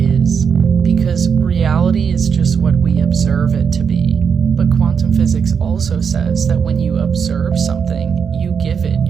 because reality is just what we observe it to be. But quantum physics also says that when you observe something, you give it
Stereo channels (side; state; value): left; quieter; 6.6 dB